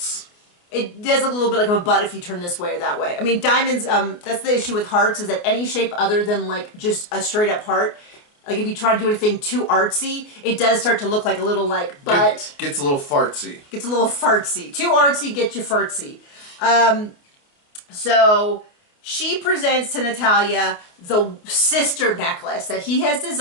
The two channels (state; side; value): late; right; 28 ms